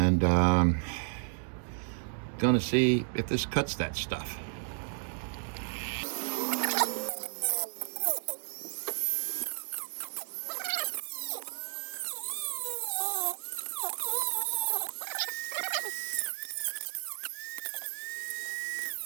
gonna see if this cuts that stuff.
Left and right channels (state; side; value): silent; left; digital silence